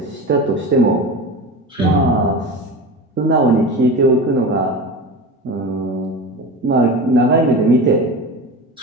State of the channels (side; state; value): both; normal; correlation 0.29